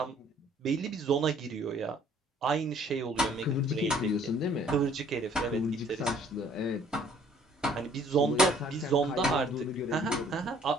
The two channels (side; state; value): both; normal; correlation 0.59